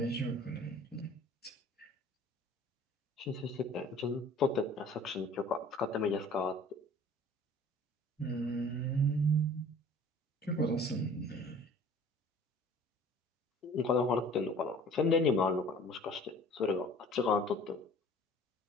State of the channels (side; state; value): both; normal; correlation 0.49